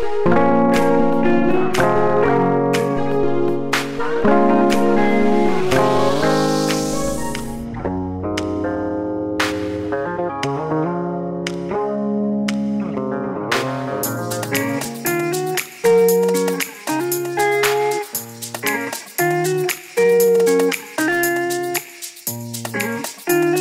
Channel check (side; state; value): both; identical; correlation 1.00